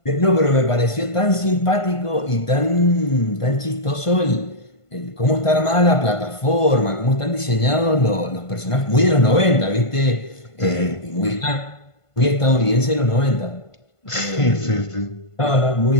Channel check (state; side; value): late; right; 1.5 ms